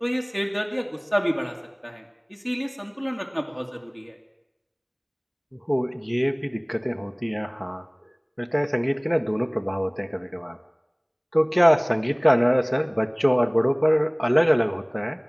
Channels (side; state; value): both; identical; correlation 1.00